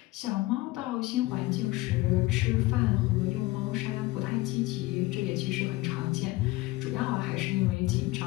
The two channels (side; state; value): right; quieter; 19.8 dB